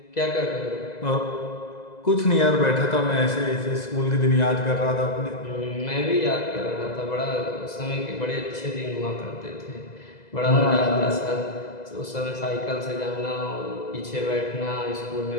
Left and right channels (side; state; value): right; late; 2.0 ms